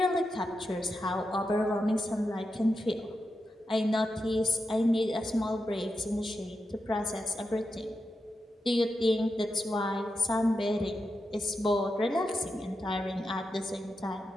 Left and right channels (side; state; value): both; normal; correlation 0.88